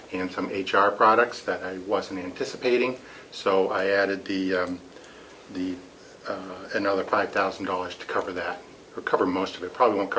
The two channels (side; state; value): both; identical; correlation 1.00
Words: and some HR products that I wasn't anticipating. So I added another $5,000 to cover that, or cover most of it. Probably won't